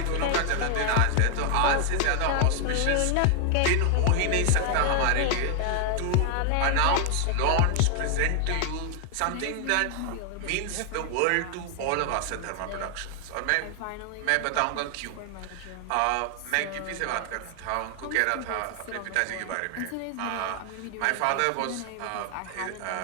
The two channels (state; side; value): different; both; correlation 0.00